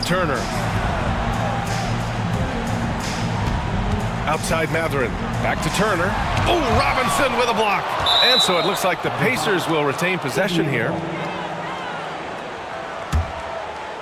Turner. Outside Matherin. Back to Turner. Oh, Robinson with a block. And so it looks like the Pacers will retain possession here.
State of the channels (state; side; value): identical; both; correlation 1.00